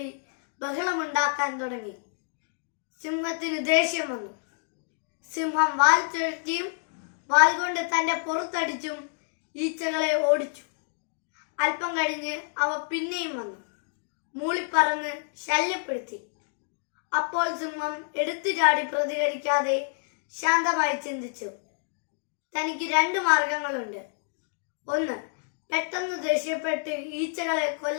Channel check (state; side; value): silent; right; digital silence